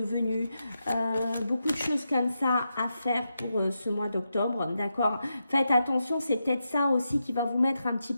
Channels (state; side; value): inverted; both; correlation -0.86